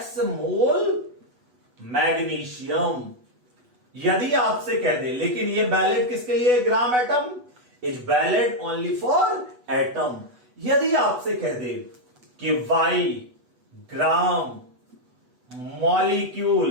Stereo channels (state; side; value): late; left; 8.1 ms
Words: mole magnesium. यदि आपसे कह दे, लेकिन ये वैलिड किसके लिए? Gram atom is valid only for atom. यदि आपसे कह दे कि वाई ग्राम